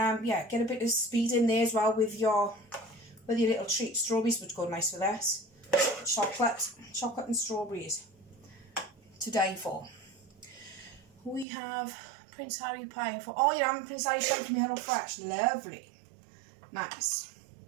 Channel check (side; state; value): left; drops out; at 11.5 s